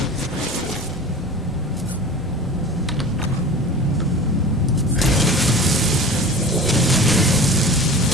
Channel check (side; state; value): both; normal; correlation 0.37